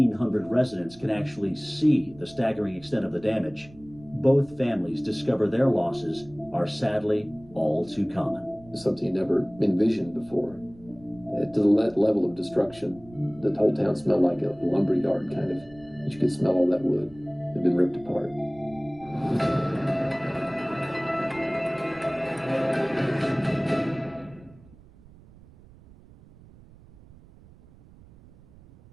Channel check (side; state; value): right; noise; rumble, 23 dB below the sound